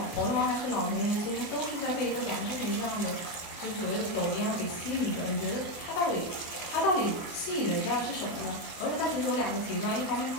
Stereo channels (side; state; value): right; late; 23 ms